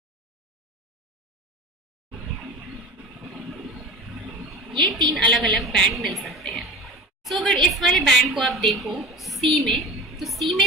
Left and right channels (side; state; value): both; normal; correlation 0.35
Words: ये 3 अलग अलग बैंड मिल सकते हैं। सो अगर इस वाले बैंड को आप देखो सी में, तो सी